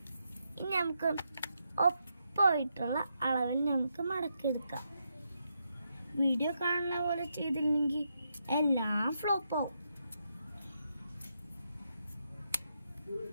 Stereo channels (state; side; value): inverted; both; correlation -0.82